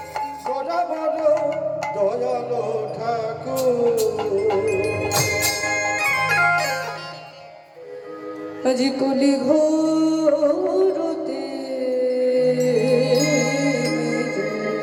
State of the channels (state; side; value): identical; both; correlation 1.00